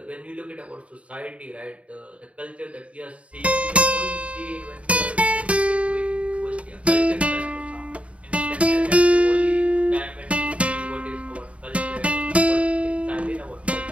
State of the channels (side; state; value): left; late; 0.064 ms